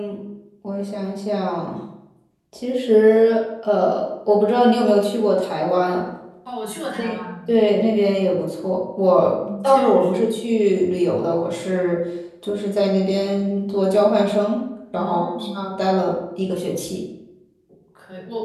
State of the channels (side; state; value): both; identical; correlation 1.00